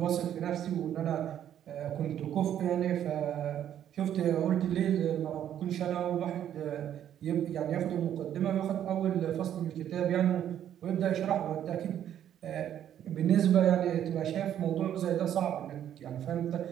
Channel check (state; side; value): quieter; left; 10.4 dB